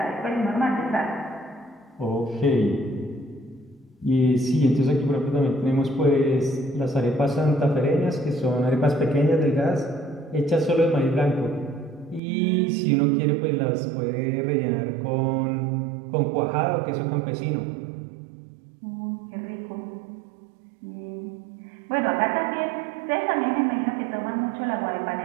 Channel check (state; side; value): drops out; left; at 12.2 s